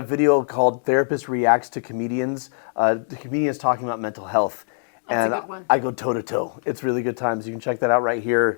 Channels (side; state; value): right; silent; digital silence